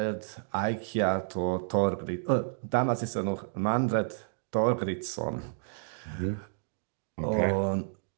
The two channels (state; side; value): silent; left; digital silence